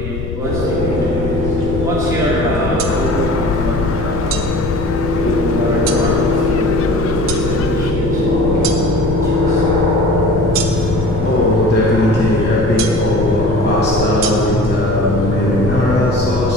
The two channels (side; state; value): left; noise; rumble, 7 dB below the sound